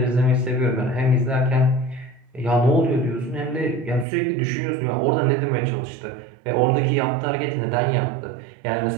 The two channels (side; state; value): left; drops out; at 4.0 s